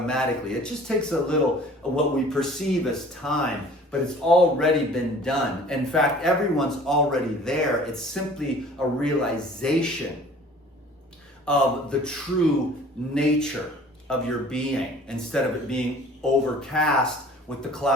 It just takes a little of what we perceive as time, but it's already been done. In fact, everyone's already there. It's simply a realization of the true nature of your being, instead of it being overcast with the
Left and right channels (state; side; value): normal; both; correlation 0.49